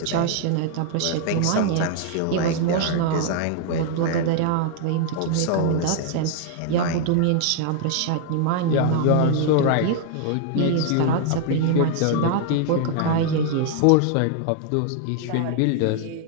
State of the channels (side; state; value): both; different; correlation 0.00